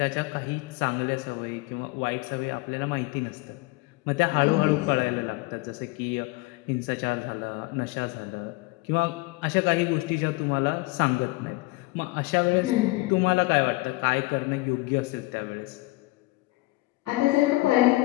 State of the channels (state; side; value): quieter; right; 22.2 dB